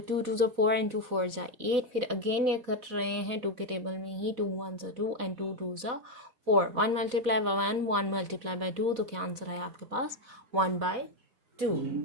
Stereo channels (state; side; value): late; left; 4.1 ms